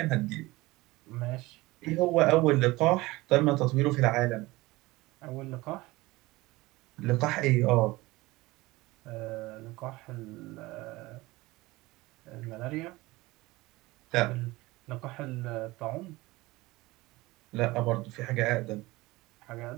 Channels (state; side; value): quieter; left; 20.5 dB